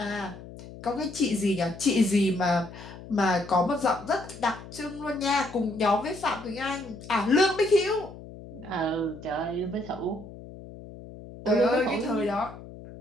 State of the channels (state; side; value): noise; left; hum, 15 dB below the sound